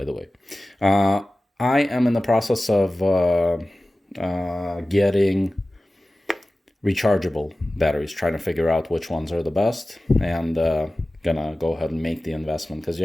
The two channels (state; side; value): normal; both; correlation 0.96